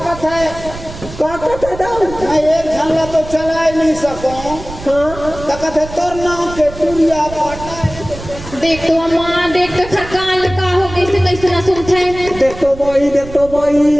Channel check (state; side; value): noise; right; rumble, 13 dB below the sound